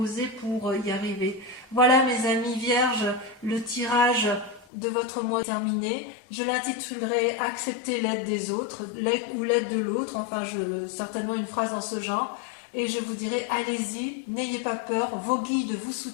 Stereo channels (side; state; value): right; drops out; at 4.7 s